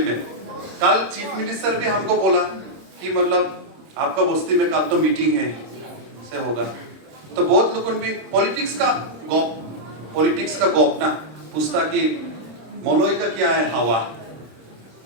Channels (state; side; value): late; left; 26 ms